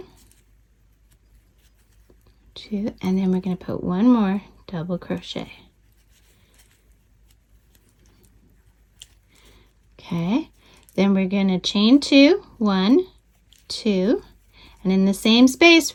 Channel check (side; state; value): both; identical; correlation 1.00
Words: 2, and then we're going to put one more double crochet. Okay, then we're going to chain 2, 1, 2, and in the same